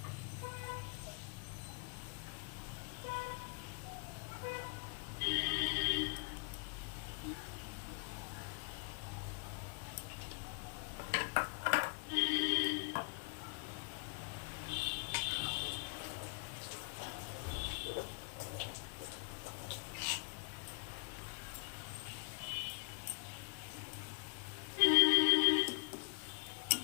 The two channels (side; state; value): right; quieter; 36.3 dB